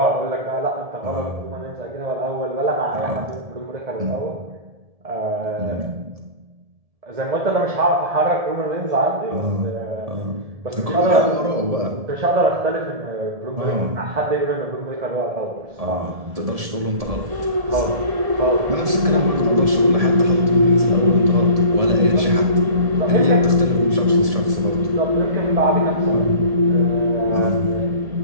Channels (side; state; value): left; late; 1.7 ms